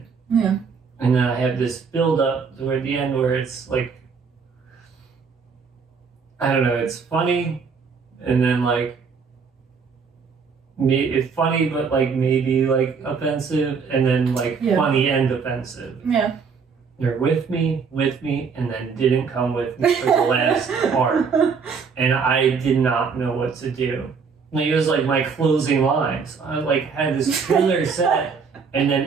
Yeah. And then I have this build up toward the end where it's like, I don't know, it's funny, and then like, it's funny, but like maybe like offensive, and then like funny and offensive. Yeah. They're with me, and then didn't come with me for the last part. And I did not know what to do. Like, it was like my closing lines. I like had this killer set and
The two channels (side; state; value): left; quieter; 5.6 dB